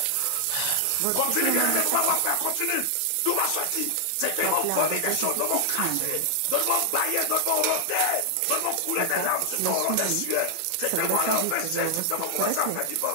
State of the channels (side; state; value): both; different; correlation 0.00